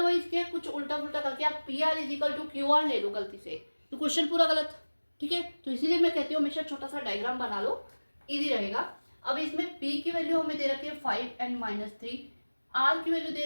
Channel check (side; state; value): both; inverted; correlation -1.00